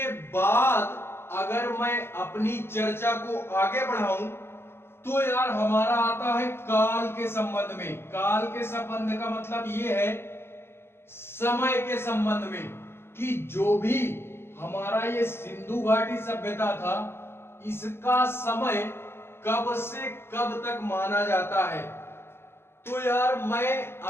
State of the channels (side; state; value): right; late; 0.12 ms